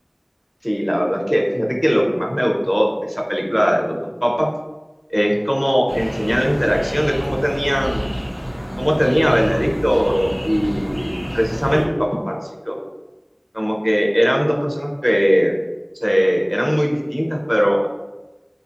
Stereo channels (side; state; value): both; identical; correlation 1.00